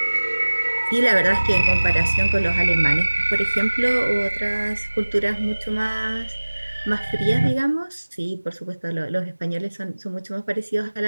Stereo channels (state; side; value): inverted; both; correlation -1.00